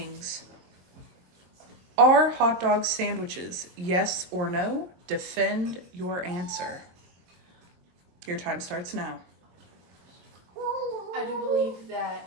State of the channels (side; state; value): left; late; 23 ms